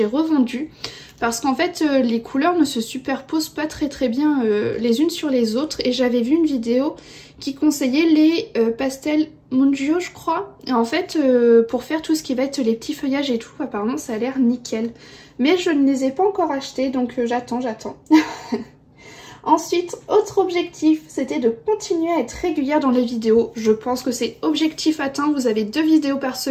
revendus. Parce qu'en fait, les couleurs ne se superposent pas très bien les unes sur les autres. Et j'avais vu une vidéo qui conseillait les pastels Mungio, je crois. Et en fait, pour faire tout ce qui va être les petits feuillages et tout, apparemment ça a l'air nickel. Mais je ne les ai pas encore achetés, donc j'attends. Ensuite, autre objectif, c'était de continuer à être régulière dans les vidéos. Je pense que c'est objectif atteint, vous avez 2 vidéos par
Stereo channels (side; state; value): both; identical; correlation 1.00